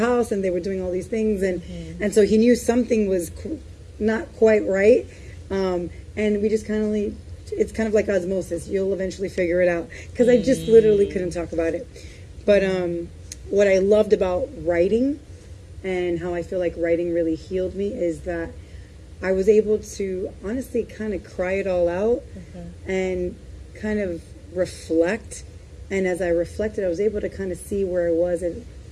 and they were doing all these things. And so he knew something was not quite right. And we just it's kind of like osmosis. You'll eventually figure it out. Because I just literally couldn't talk about it. But what I loved about writing and how I feel like writing really healed me is that I was able to honestly kind of cry it all out and kind of reflect. And as I reflected, I was able to kind of see where I was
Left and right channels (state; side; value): identical; both; correlation 1.00